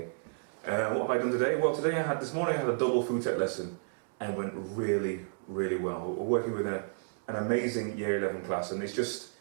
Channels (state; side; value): silent; left; digital silence